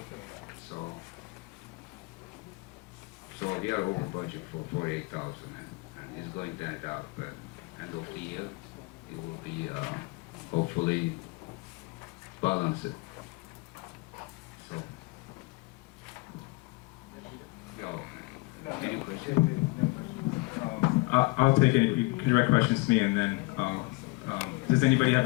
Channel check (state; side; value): quieter; right; 24.8 dB